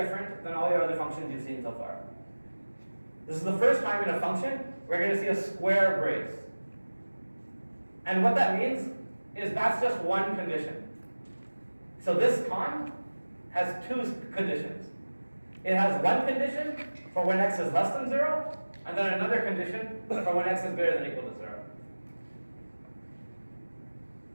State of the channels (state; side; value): inverted; both; correlation -1.00